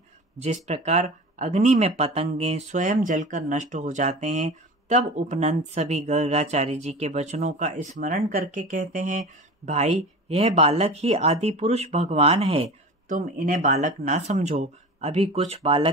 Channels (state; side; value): normal; both; correlation 0.34